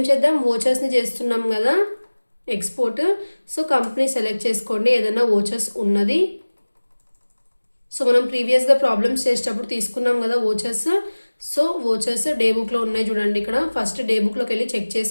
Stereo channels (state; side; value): inverted; both; correlation -1.00